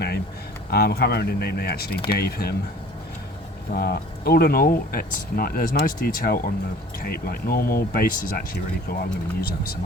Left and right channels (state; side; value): normal; both; correlation 0.48